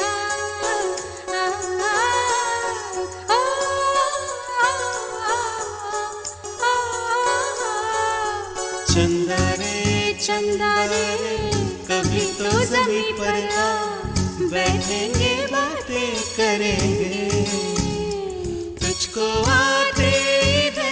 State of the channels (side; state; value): both; identical; correlation 1.00